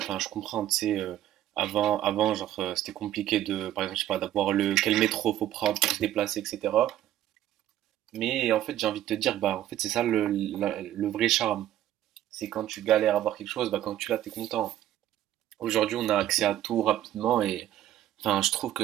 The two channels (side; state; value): left; quieter; 12.6 dB